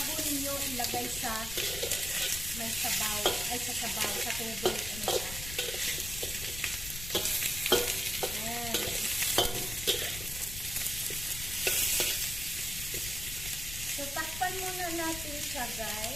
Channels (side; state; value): left; noise; rumble, 9 dB below the sound